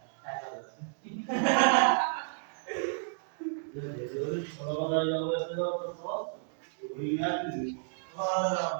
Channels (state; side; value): silent; left; digital silence